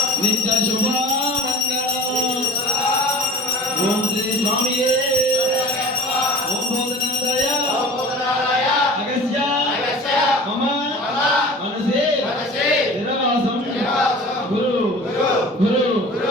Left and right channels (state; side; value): normal; both; correlation 0.41